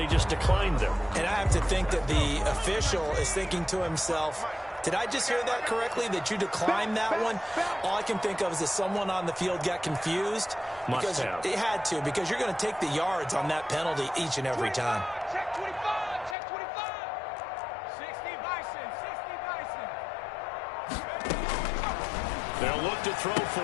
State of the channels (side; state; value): right; drops out; at 16.4 s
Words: just declined them. And I have to think that the official is thinking to himself, did I just hear that correctly, that you declined that one? All I can think of is that someone on the field got confused. Must have. It had to, because you're going to take the yards on that penalty each and every time. Check 25. Check 25. 60 Bison. 60 Bison. They'll look to throw for